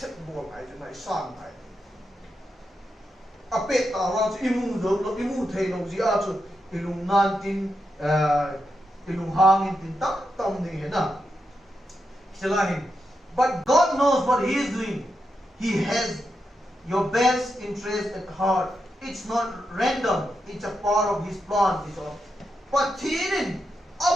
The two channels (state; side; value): normal; both; correlation 0.85